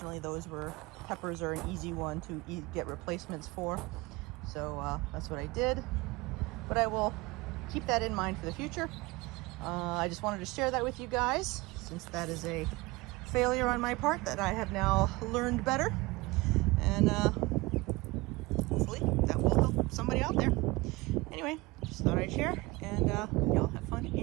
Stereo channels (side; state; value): left; quieter; 22.5 dB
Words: peppers are an easy one to get replacements for. So that's what I did. But I will keep that in mind for the future. I just wanted to share that with you guys, since that is a failure on my part that I have now learned better. And hopefully that will help somebody out there. Anyway, just thought I'd share, and y'all have fun